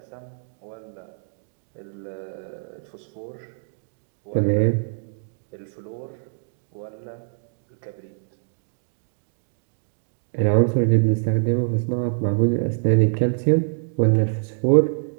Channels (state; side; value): silent; left; digital silence